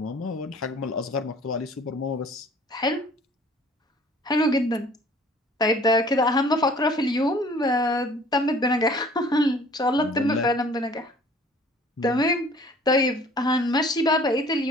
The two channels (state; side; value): normal; both; correlation 0.52